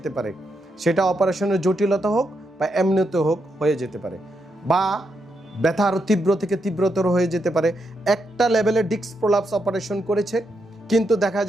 পারে। সেটা অপারেশনের জটিলতা হোক বা এমনিতে হোক হয়ে যেতে পারে, বা ব্যথা আরও তীব্র থেকে তীব্রতর হয়ে যেতে পারে। একটা লেভেলে ডিস্ক প্রলাপস অপারেশন করেছে, কিন্তু দেখা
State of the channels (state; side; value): normal; both; correlation 0.82